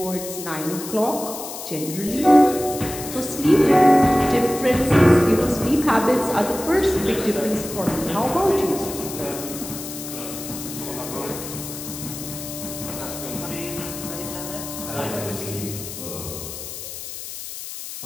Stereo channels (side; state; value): left; noise; hiss, 10 dB below the sound